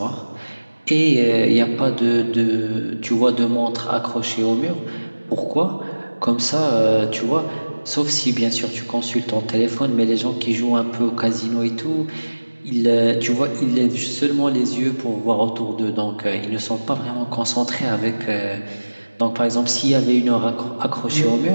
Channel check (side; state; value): both; inverted; correlation -1.00